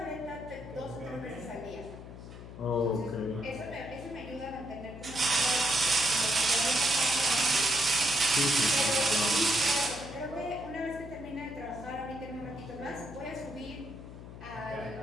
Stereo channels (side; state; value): left; noise; hum, 13 dB below the sound